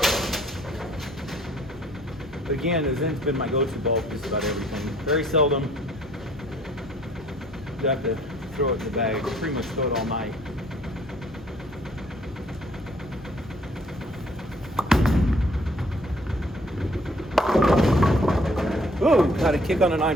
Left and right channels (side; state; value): both; normal; correlation 0.60